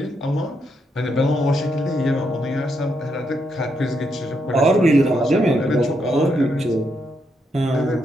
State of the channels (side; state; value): both; normal; correlation 0.79